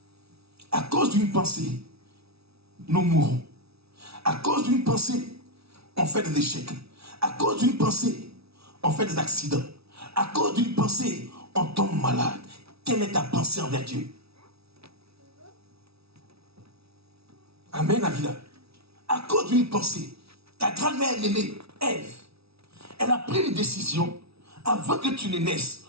nous mourrons. À cause d'une pensée, on fait des échecs. À cause d'une pensée, on fait des accidents. À cause d'une pensée, on tombe malade. Quelle est ta pensée envers Dieu? Amen, Avila. À cause d'une pensée, ta grand-mère aimée, Ève, elle a pris une décision avant que tu ne naisses.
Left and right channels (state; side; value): late; left; 0.77 ms